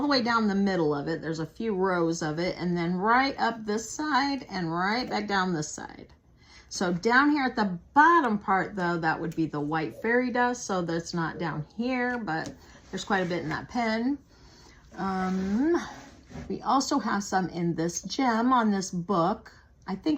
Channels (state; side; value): identical; both; correlation 1.00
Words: the way down the middle of it. There's a few rows of it, and then right up this side and right back down this side. So down here at the bottom part, though, that would be the white fairy dust. So that's not down here, but there's quite a bit in that pen. We also have some in this gem on this book. I